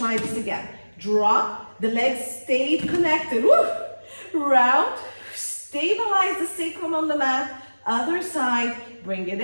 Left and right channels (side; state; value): both; inverted; correlation -1.00